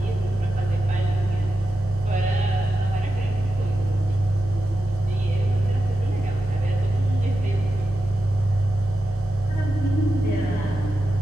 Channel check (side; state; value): both; normal; correlation 0.90